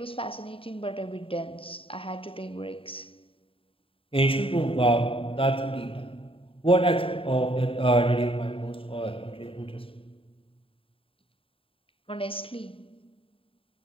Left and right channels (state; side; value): late; right; 0.26 ms